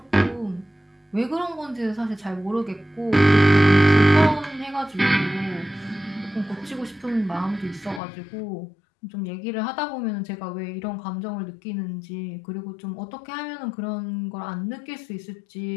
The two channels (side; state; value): right; drops out; at 8.0 s